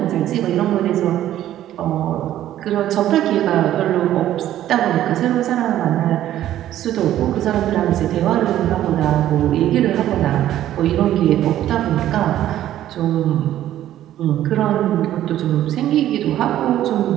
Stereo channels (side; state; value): left; quieter; 12.5 dB